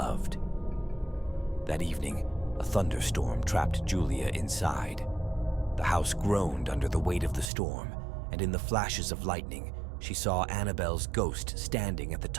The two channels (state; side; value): drops out; left; at 7.5 s